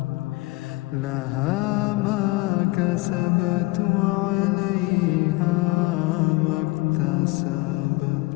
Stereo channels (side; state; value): right; quieter; 22.2 dB